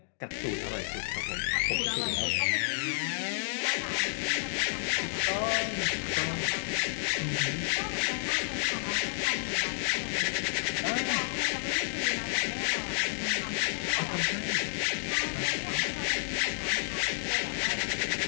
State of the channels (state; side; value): silent; right; digital silence